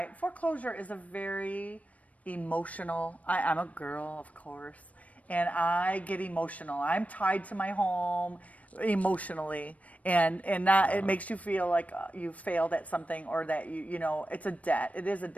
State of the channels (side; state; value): right; late; 0.068 ms